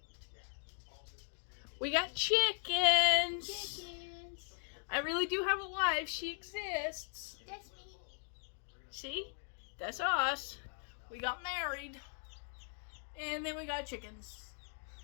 We got chickens. Chickens. I really do have a wife. She exists. That's me. See? That's us. We got married. And then we got chickens.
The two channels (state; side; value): silent; right; 52 dB below the other